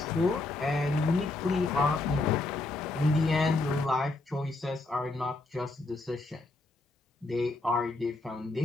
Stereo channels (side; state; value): right; quieter; 3.2 dB